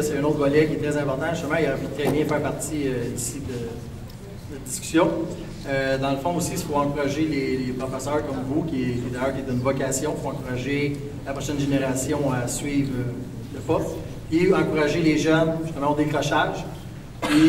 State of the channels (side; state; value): both; identical; correlation 1.00